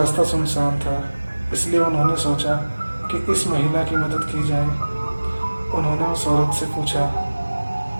सुनसान था, इसलिए उन्होंने सोचा कि इस महिला की मदद की जाए। उन्होंने उस औरत से पूछा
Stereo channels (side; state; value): both; inverted; correlation -1.00